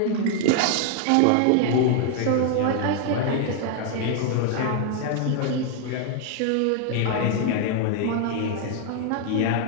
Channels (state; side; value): different; both; correlation 0.00